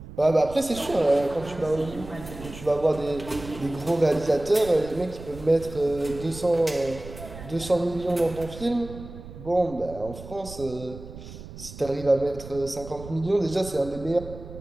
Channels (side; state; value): right; noise; rumble, 14 dB below the sound